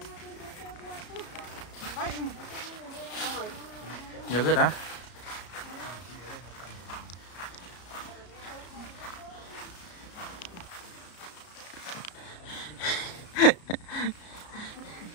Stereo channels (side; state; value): right; late; 33 ms